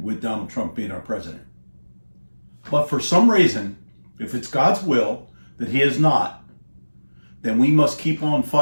with Donald Trump being our president. But for some reason, if it's God's will that he is not, then we must keep on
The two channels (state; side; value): inverted; both; correlation -1.00